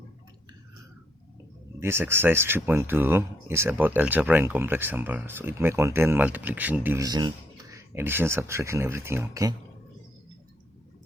This exercise 3.2 is about algebra and complex number. So it may contain multiplication, division, addition, subtraction, everything. Okay.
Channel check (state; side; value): normal; both; correlation 0.73